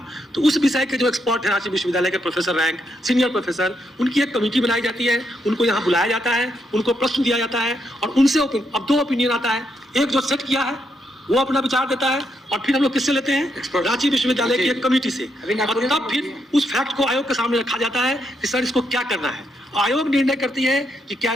तो उस विषय के जो एक्सपर्ट है रांची विश्वविद्यालय के प्रोफेसर रैंक, सीनियर प्रोफेसर, उनकी एक कमेटी बनाई जाती है, उनको यहाँ बुलाया जाता है, उनको प्रश्न दिया जाता है और उनसे अब 2 ओपिनियन आता है। एक जो सेट किया है वो अपना विचार देता है और फिर हम लोग किससे लेते हैं, रांची विश्वविद्यालय की एक कमेटी से, और तब फिर उस फैक्ट को आयोग के सामने रखा जाता है कि सर इसको क्या करना है। आयोग निर्णय करती है कि क्या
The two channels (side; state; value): both; normal; correlation 0.79